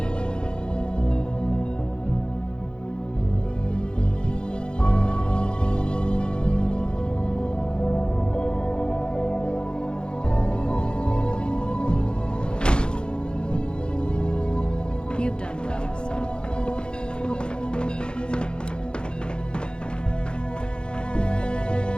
You've done well,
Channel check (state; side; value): late; right; 0.050 ms